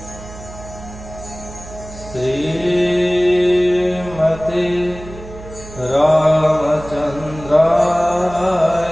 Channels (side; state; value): right; noise; hum, 15 dB below the sound